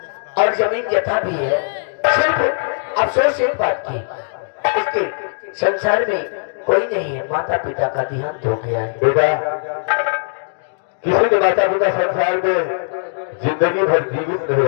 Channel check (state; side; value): silent; right; digital silence